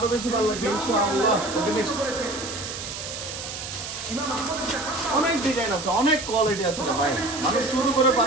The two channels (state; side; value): noise; right; hiss, 8 dB below the sound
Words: বেশি ভালো লাগবে ইনশাআল্লাহ। ওকে, নেক্সট। অনেক ডিজাইন আছে, অনেক কোয়ালিটি আছে রে ভাই। মানুষ শুরু করে